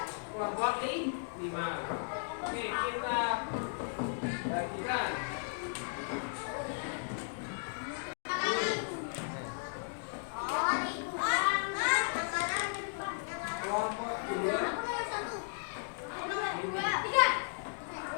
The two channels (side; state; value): right; silent; digital silence